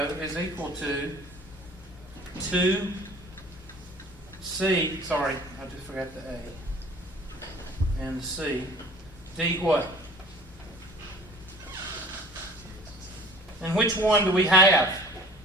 is equal to 2 C, sorry, I just forgot the A. And the C. D what? And which one do we have?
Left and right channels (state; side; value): normal; both; correlation 0.47